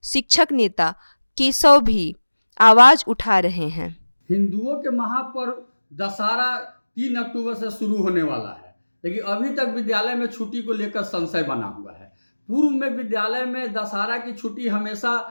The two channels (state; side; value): inverted; both; correlation -1.00